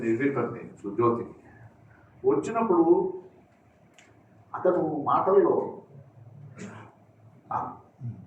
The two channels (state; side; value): identical; both; correlation 1.00